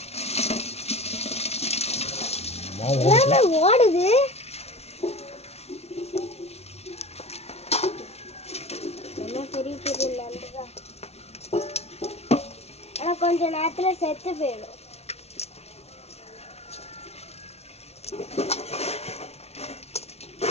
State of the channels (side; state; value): right; late; 0.31 ms